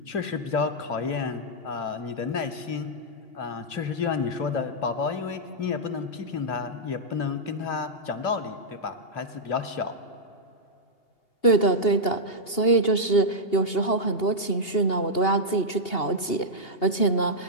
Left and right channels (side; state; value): right; late; 2.8 ms